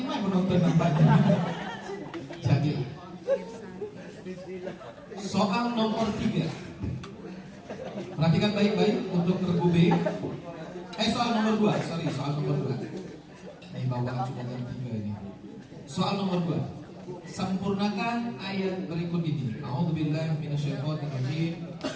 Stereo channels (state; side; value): identical; both; correlation 1.00